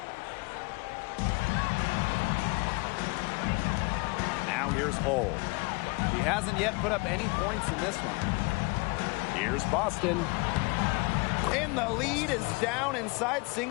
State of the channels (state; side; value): quieter; right; 27.6 dB